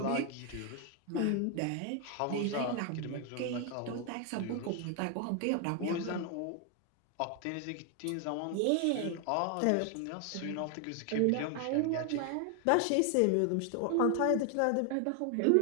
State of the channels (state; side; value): different; both; correlation 0.00